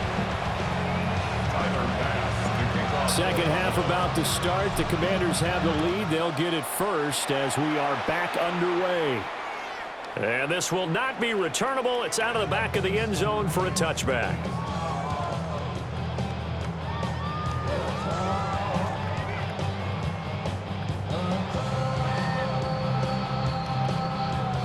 Second half about to start. The Commanders have the lead. They'll get it first as we are back underway. And this will not be returnable. It's out of the back of the end zone for a touchback.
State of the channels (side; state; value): both; identical; correlation 1.00